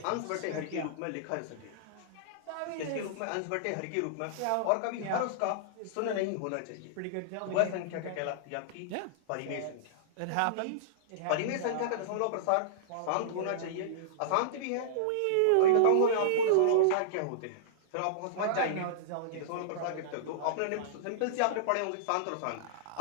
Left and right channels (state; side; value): different; both; correlation -0.02